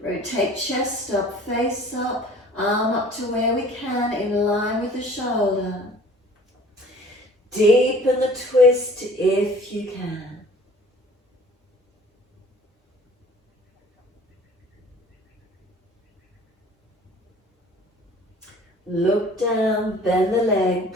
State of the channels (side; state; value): both; normal; correlation 0.49